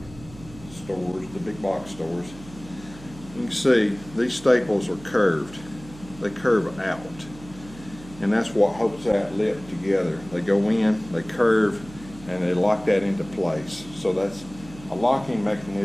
stores, the big box stores. You can see these staples are curved. They curve out, and that's what holds that lip together. They go in, they curve, and they lock that into place. So that's a locking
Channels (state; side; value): noise; right; hum, 18 dB below the sound